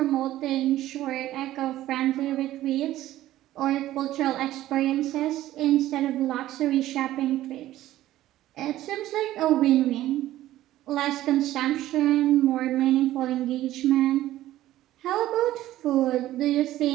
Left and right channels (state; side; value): quieter; left; 14.5 dB